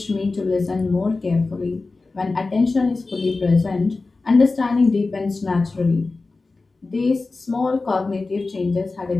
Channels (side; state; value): right; quieter; 3.7 dB